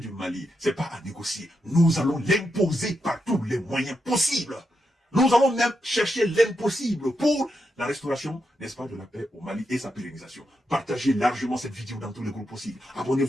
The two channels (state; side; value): normal; both; correlation 0.84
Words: Mali, c'est pas à négocier. Nous allons l'imposer par tous les moyens possibles. Nous allons même chercher l'impossible pour la restauration, n'est-ce pas, de la paix au Mali et sa pérennisation. Partagez largement cette vidéo dans tous les groupes possibles.